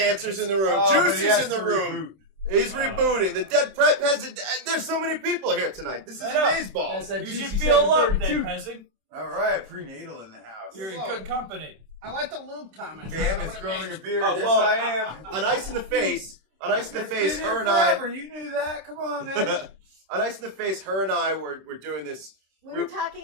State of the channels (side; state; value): left; late; 26 ms